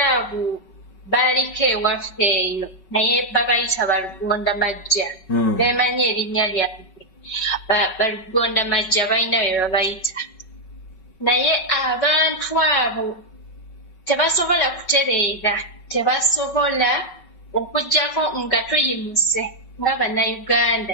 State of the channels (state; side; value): late; right; 5.3 ms